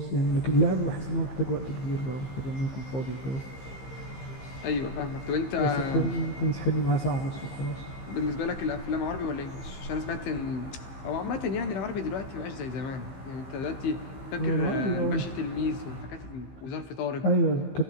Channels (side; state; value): right; late; 15 ms